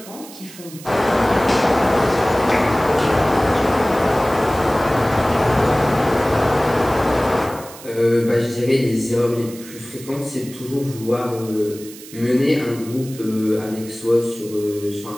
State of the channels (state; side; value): noise; right; hiss, 17 dB below the sound